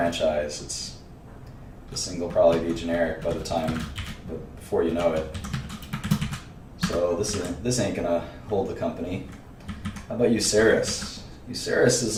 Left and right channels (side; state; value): both; identical; correlation 1.00